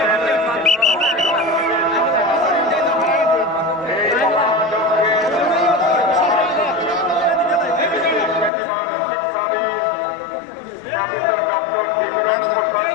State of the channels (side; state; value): right; drops out; at 8.5 s